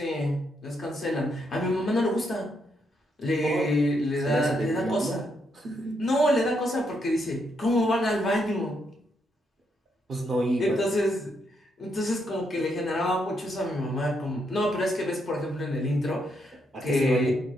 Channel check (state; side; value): normal; both; correlation 0.78